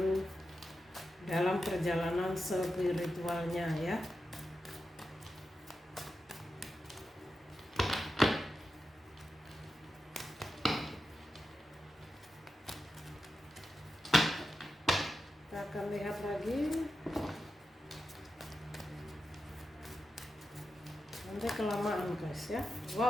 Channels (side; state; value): both; normal; correlation 0.90